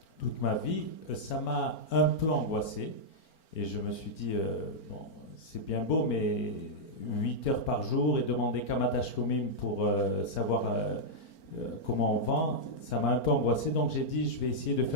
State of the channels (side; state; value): right; late; 4.4 ms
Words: toute ma vie, ça m'a un peu angoissé, et je me suis dit, bon, c'est bien beau, mais 8 heures par jour et demander Kamadash Komim pour savoir comment on vend, ça m'a un peu angoissé, donc j'ai dit je vais essayer de